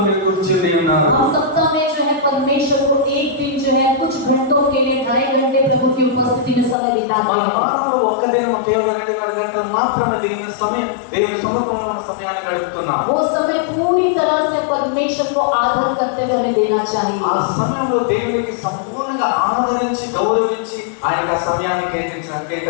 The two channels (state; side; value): drops out; right; at 6.8 s